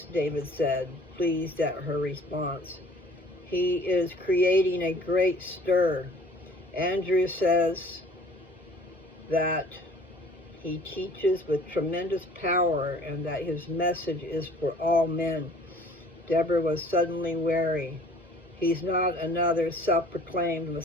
David said, pleased at her response. He is creating a great stir. Andrew says that he teaches with tremendous power and that his message is for all men. Deborah was suddenly wary. He's not another self-proclaimed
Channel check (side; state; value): both; normal; correlation 0.52